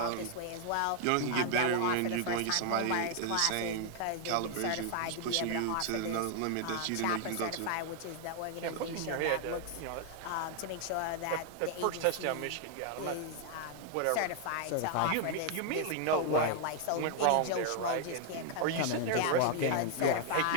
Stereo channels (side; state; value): both; different; correlation 0.00